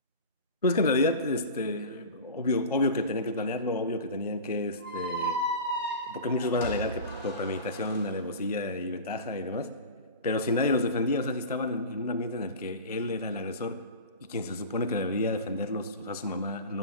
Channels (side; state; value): both; inverted; correlation -0.32